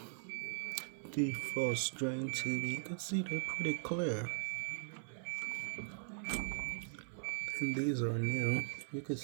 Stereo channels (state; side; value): silent; left; 51 dB below the other